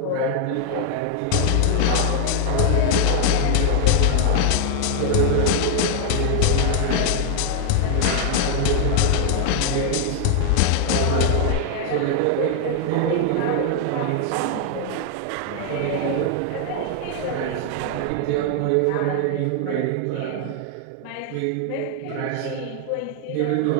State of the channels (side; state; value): both; different; correlation 0.00